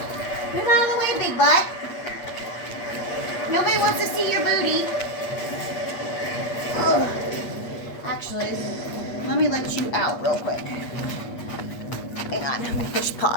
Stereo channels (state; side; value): late; right; 8.4 ms